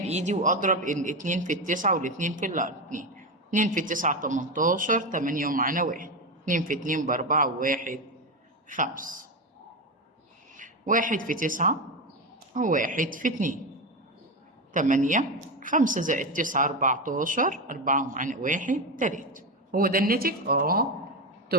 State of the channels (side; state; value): both; normal; correlation 0.14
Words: وأضرب الاتنين في 9 والاتنين في 2. 2 في 9 18، 8 ومعانا 1. 2 في 2 ب4 و1 5. 1 في 9 و1 في 2 8. 5 زائد 9 14. 4 ومعانا 1 3. هو ده الناتج؟